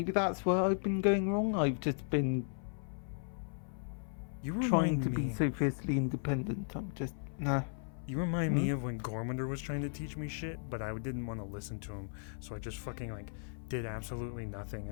where I've been going wrong. I've just been trying to be so fiercely independent. I'm just nah. You remind me of when Gormander was trying to teach me shit, but I didn't want to listen to him, so I just fucking like did absolutely nothing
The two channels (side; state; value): right; silent; 54 dB below the other